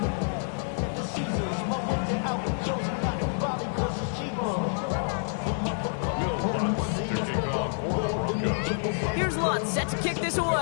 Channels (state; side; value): silent; right; digital silence